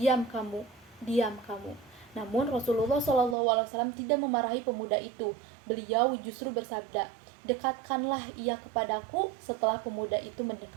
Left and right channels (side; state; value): left; drops out; at 3.4 s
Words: kamu, diam kamu." Namun Rasulullah SAW tidak memarahi pemuda itu. Beliau justru bersabda, "Dekatkanlah ia kepadaku." Setelah pemuda itu